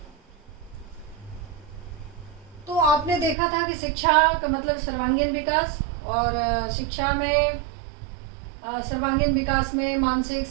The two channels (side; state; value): left; drops out; at 3.4 s